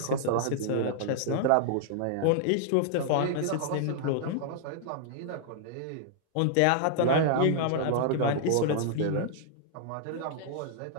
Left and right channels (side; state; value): both; different; correlation -0.01